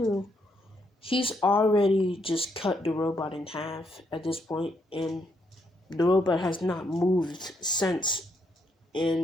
he's already just cut the robot in half at this point, and the robot has not moved since,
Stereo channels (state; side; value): normal; both; correlation 0.76